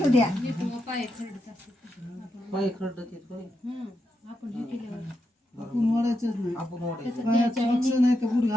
द्या पाय खरडत येत बाई. आपण ओढायचंच नाही. आपण ओढायचं. पायात सॉक्स नाही तर बूट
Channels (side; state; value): both; normal; correlation 0.84